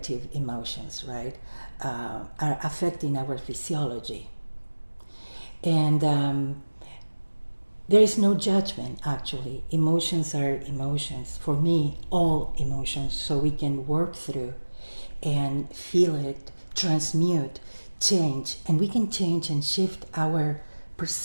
emotions, right, are affecting our physiology. And there is no judgment, actually. Emotions are emotions. For me, all emotions, so we can work through and feel it, transmute, change, and we can change and shift our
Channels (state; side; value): inverted; both; correlation -1.00